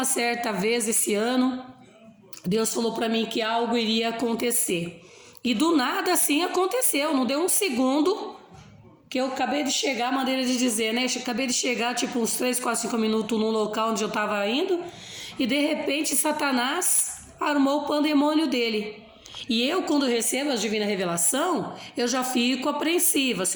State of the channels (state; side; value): identical; both; correlation 1.00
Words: certa vez esse ano, Deus falou para mim que algo iria acontecer. E do nada assim aconteceu, não deu um segundo. Que eu acabei de chegar, maneira de dizer, né? Acabei de chegar, tipo, uns 3, 4, 5 minutos num local onde eu estava indo. E de repente, Satanás armou o pandemônio dele. E eu, quando recebo a divina revelação, eu já fico apreensiva.